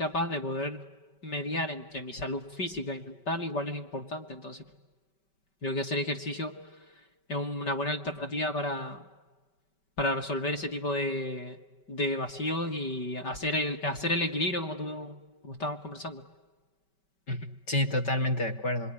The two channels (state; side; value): late; right; 5.2 ms